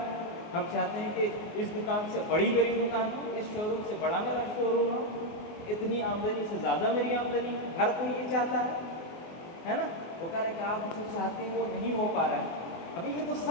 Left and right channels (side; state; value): right; late; 24 ms